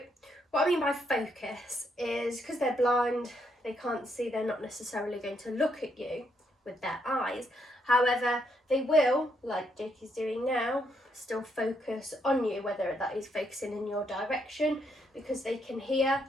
what I mean by focus is because they're blind, they can't see, they're not necessarily going to look at you with their eyes. However, they will, like Jake is doing now, still focus on you, whether that is focusing in your direction because they can hear.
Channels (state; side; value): normal; both; correlation 0.75